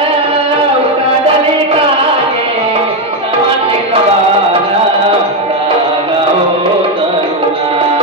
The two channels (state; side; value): normal; both; correlation 0.06